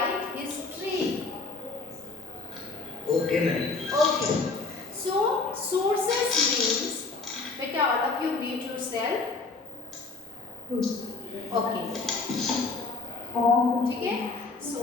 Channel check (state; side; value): quieter; right; 3.9 dB